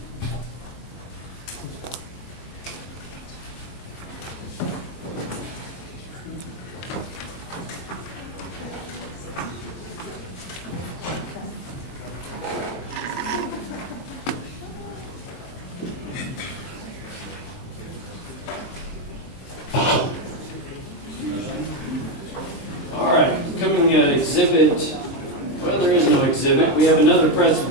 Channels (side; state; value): right; late; 23 ms